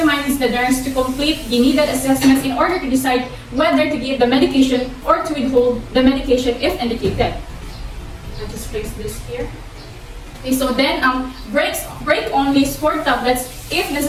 the nurse to complete the needed assessments in order to decide whether to give the medication or to withhold the medication if indicated. I'll just place this here. Okay, so then break only stored tablets if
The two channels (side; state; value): both; identical; correlation 1.00